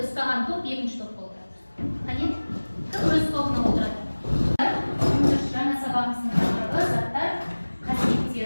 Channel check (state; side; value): inverted; both; correlation -1.00